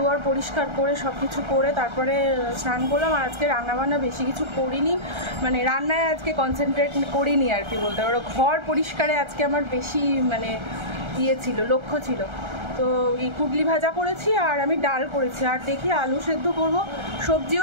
পরিষ্কার করে সব কিছু করে তারপরে স্নান করলাম। আর আজকে রান্নাবান্না বেশি কিছু করিনি, মানে রান্নায় আজকে কনসেন্ট্রেট করিনি আর কি বলতে পারো। ঘর পরিষ্কারে আজকে আমার বেশি মানে ইয়ে ছিল, লক্ষ্য ছিল। তো এই কুটলি ভাজা করেছি আর আমি ডাল করেছি, আর দেখি আলু সেদ্ধ করব।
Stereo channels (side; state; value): left; late; 1.3 ms